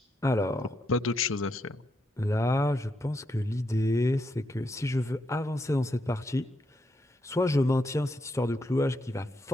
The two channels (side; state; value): both; normal; correlation 0.80